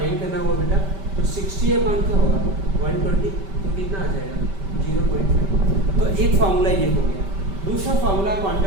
करना होगा बेटा तो 60 या कौन क्या होगा 120, तो कितना आ जाएगा 0.5। तो एक फार्मूला ये हो गया। दूसरा फार्मूला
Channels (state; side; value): late; left; 5.1 ms